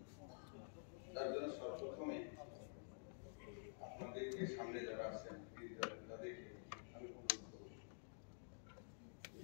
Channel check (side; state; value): right; silent; digital silence